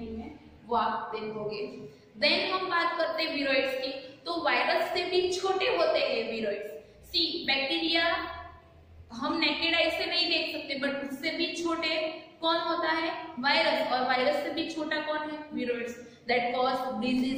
में, वो आप देखोगे। Then हम बात करते हैं विरोइड्स की। तो वायरस से भी छोटे होते हैं विरोइड्स। सी बैक्टीरिया हम नेकेड आई से नहीं देख सकते, बट उससे भी छोटे कौन होता है, वायरस, और वायरस से भी छोटा कौन है, viroids, that cause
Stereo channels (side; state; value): both; identical; correlation 1.00